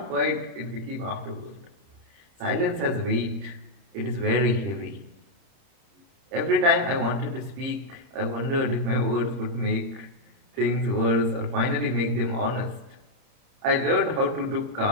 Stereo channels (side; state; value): left; late; 30 ms